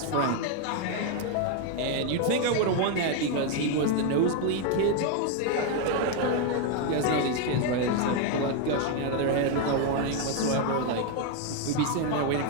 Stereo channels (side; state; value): both; different; correlation 0.01